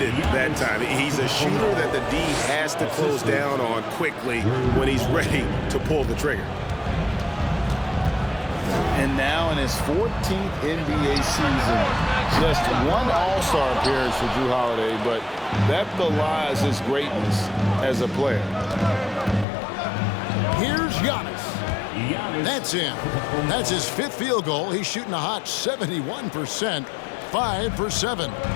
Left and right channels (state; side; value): drops out; right; at 19.5 s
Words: that time. He's a shooter that the D has to close down on quickly when he's ready to pull the trigger. And now in his 14th NBA season, just one All-Star appearance for Jrue Holiday, but that belies his greatness as a player. Here's Giannis. That's him. That's his fifth field goal. He's shooting a hot 71%, 5 for 7.